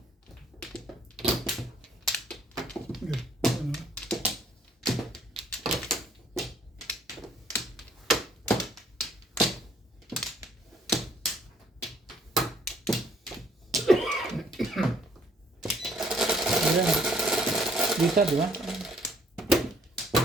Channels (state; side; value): normal; both; correlation 0.63